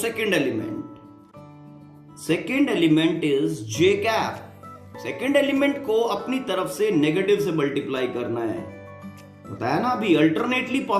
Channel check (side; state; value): both; identical; correlation 1.00